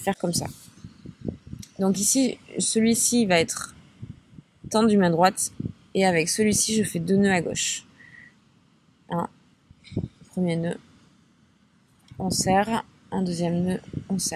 comme ça. Donc ici, celui-ci va être tendu main droite. Et avec celui-ci, je fais 2 nœuds à gauche. Un premier nœud. On serre. Un deuxième nœud. On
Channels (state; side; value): identical; both; correlation 1.00